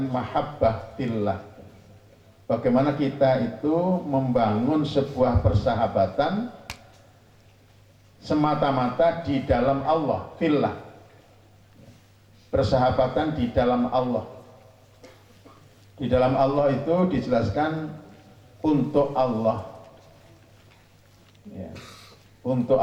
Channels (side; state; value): both; identical; correlation 1.00